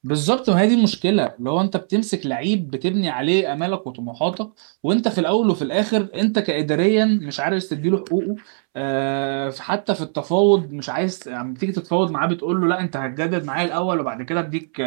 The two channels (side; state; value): left; silent; 65 dB below the other